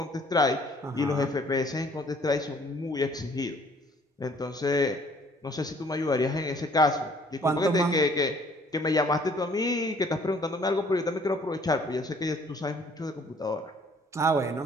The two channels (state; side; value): normal; both; correlation 0.58